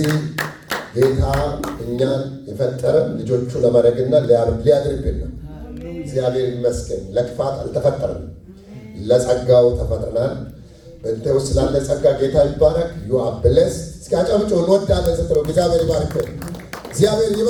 ጌታ እኛን የፈጠረ ልጆቹ ለማድረግና ሊያድርብን ነው። እግዚአብሔር ይመስገን። ለክፋት አልተፈጠረም፣ ለጸጋው ተፈጥረናል። በእንተ ውስጥ ስላለ ጸጋ ጌታ ይባረክ። ዩ አር ብሌስድ። እስኪ አጨብጭቡ። እንወዳለን ስትለው እግዚአብሔር ይባርክ፣ እግዚአብሔር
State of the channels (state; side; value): identical; both; correlation 1.00